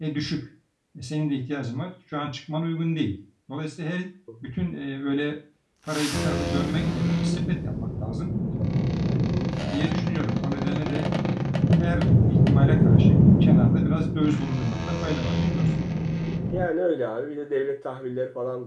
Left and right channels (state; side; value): identical; both; correlation 1.00